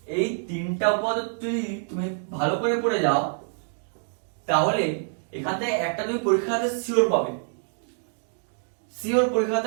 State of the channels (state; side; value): silent; left; digital silence